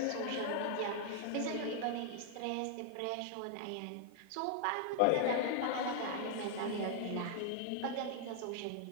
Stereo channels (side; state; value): both; different; correlation 0.00